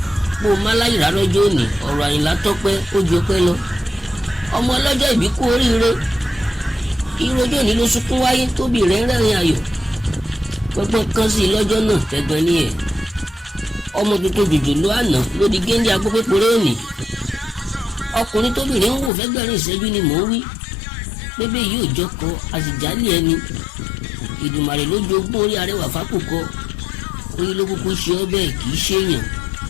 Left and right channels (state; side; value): drops out; right; at 19.1 s